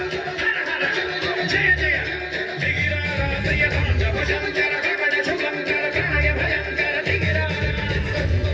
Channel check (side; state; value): both; identical; correlation 1.00